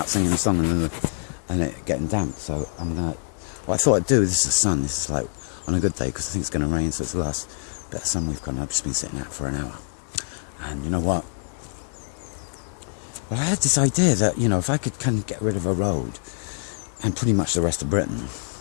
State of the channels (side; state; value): right; silent; 62 dB below the other